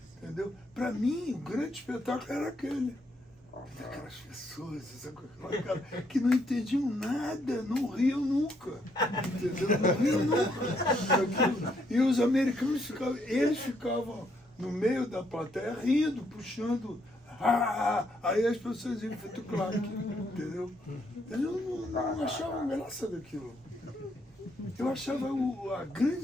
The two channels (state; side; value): normal; both; correlation 0.73